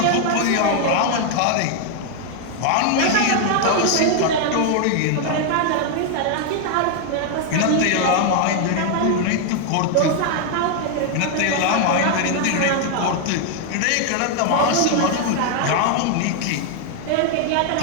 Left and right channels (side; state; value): both; different; correlation 0.00